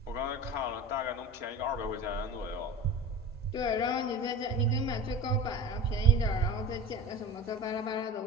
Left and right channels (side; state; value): both; normal; correlation 0.33